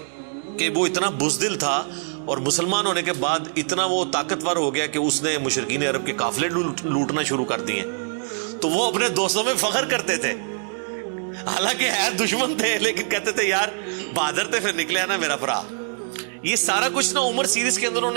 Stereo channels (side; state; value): left; silent; digital silence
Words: کہ وہ اتنا بزدل تھا، اور مسلمان ہونے کے بعد اتنا وہ طاقتور ہو گیا کہ اس نے مشرکین عرب کے قافلے لوٹنا شروع کر دیے۔ تو وہ اپنے دوستوں میں فخر کرتے تھے، حالانکہ ہے دشمن تھے لیکن کہتے تھے یار بہادر تھے، پھر نکلے نا میرا برا۔ یہ سارا کچھ نا عمر سیریز کے اندر انہوں